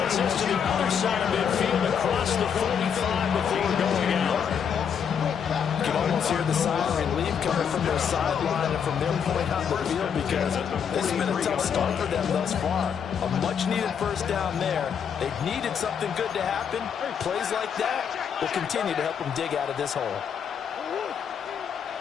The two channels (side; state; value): right; quieter; 7.5 dB